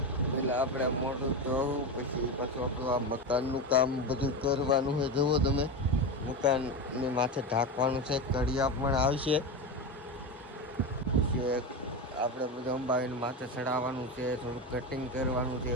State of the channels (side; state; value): both; normal; correlation 0.18